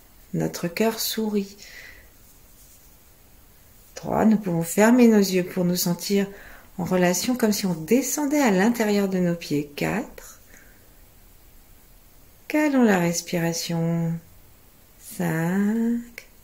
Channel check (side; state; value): both; identical; correlation 1.00